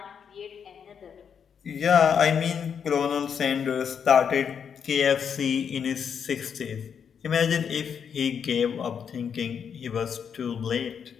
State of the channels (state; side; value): quieter; right; 7.3 dB